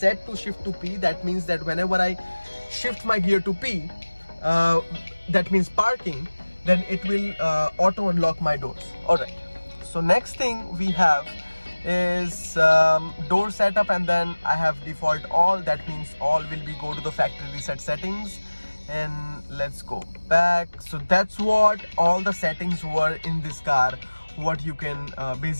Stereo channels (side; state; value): both; inverted; correlation -1.00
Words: to shift to P. That means that whenever I shift my gear to P, that means parking, then it will auto unlock my doors. All right, so next thing we have is door setup, and then I have default all. That means all will be go to the factory reset settings, and let's go back. So that's what all the settings were in this car, what you can